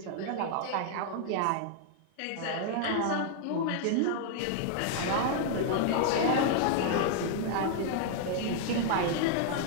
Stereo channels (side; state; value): both; different; correlation 0.00